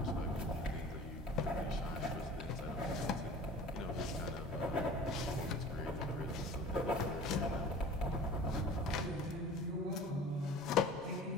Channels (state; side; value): normal; both; correlation 0.42